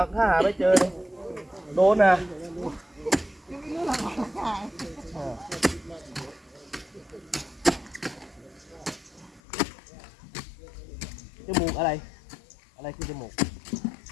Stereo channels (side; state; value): right; drops out; at 9.4 s